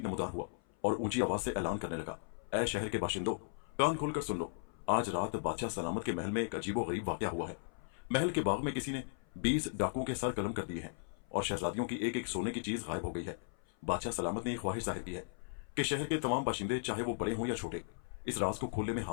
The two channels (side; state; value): right; silent; 53 dB below the other